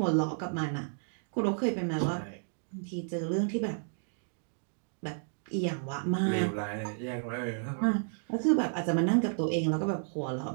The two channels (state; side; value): silent; left; digital silence